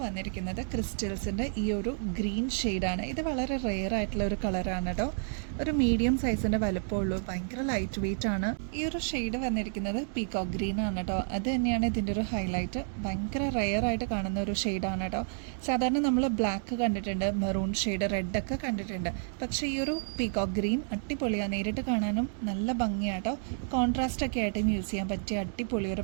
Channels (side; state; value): left; silent; digital silence